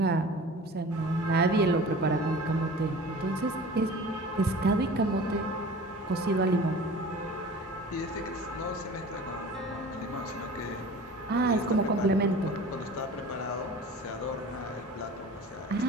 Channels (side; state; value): both; normal; correlation 0.40